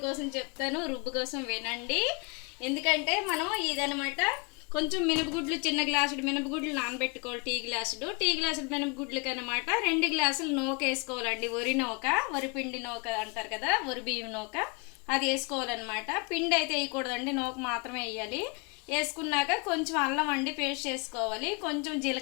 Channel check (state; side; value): quieter; right; 32.4 dB